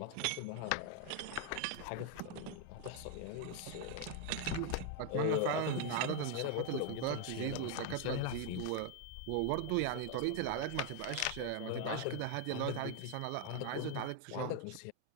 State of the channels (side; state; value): both; different; correlation 0.01